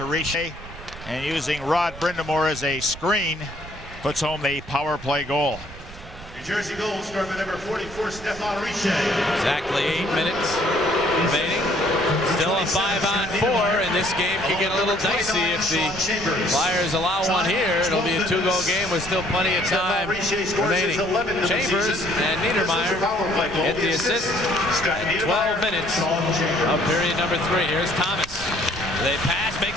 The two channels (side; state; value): right; noise; rumble, 17 dB below the sound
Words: Richer, and using Rod Brind'Amour as a screen, puts home the power play goal. New Jersey goal scored by number 44, Stéphane Richer. Exactly 8 minutes remaining. Still a 5-on-4, and this game could get a little dicey if the Flyers allow one here. It'll be a 2-goal game with still plenty of time remaining. Chambers and Niedermeyer get the assist at 12 minutes of period number 3. Here's Thomas. They pass, makes